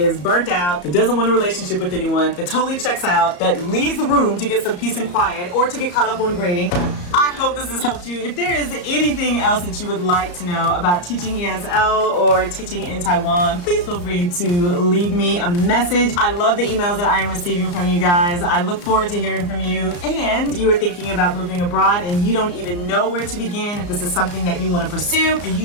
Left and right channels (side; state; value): right; late; 34 ms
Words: burnt out, that doesn't want a relationship with anyone, that totally checks out, that leaves the room to get some peace and quiet or to get caught up on grading. I hope this has helped you. If there is anything else that you would like to know about teaching ESL or teaching in Taiwan, please feel free to leave me a message. I love the emails that I am receiving from you guys. I look forward to hearing from you. And you are thinking about moving abroad and you don't even know where to begin. If this is something that you want to pursue,